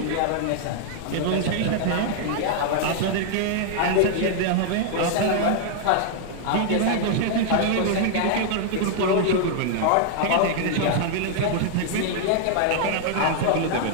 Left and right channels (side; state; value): both; different; correlation 0.00